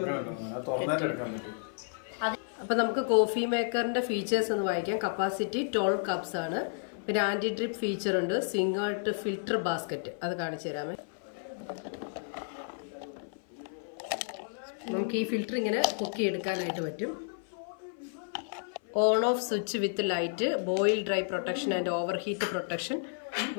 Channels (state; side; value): silent; right; 55 dB below the other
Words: അപ്പൊ നമുക്ക് കോഫി മേക്കറിന്റെ ഫീച്ചേഴ്സ് ഒന്ന് വായിക്കാം. കപ്പാസിറ്റി 12 കപ്സ് ആണ്. പിന്നെ ആന്റി ഡ്രിപ്പ് ഫീച്ചർ ഉണ്ട്. സിംഗിൾ ഫിൽറ്റർ ബാസ്ക്കറ്റ്, അത് കാണിച്ചു തരാമേ. നമുക്ക് ഈ ഫിൽറ്റർ ഇങ്ങനെ പൊക്കിയെടുക്കാനായിട്ട് പറ്റും. On off switch with light, boil dry protection and over heat protection,